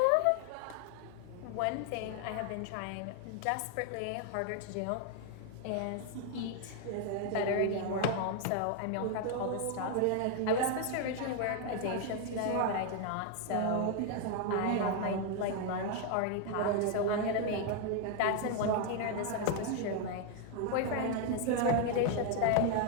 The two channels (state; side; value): different; both; correlation 0.00